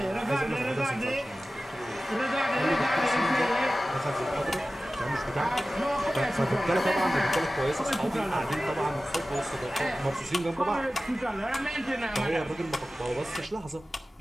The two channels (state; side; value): normal; both; correlation 0.96